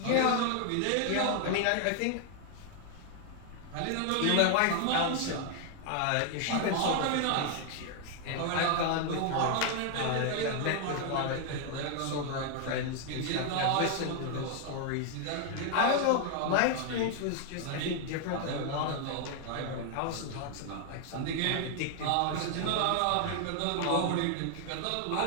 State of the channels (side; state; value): both; different; correlation 0.00